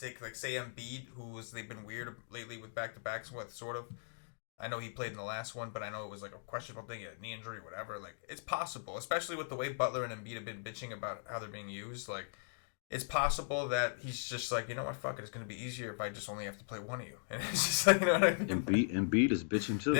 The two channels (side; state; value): right; silent; digital silence